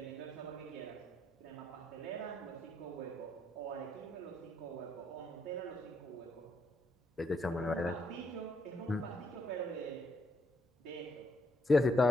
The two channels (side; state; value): both; normal; correlation 0.75